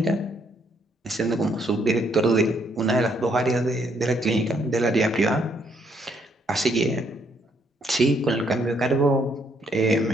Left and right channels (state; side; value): normal; both; correlation 0.70